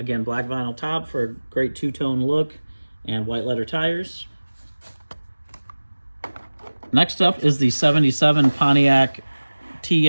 black vinyl top for a great two-tone look and white letter tires. Next up is the 77 Pontiac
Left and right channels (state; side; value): inverted; both; correlation -1.00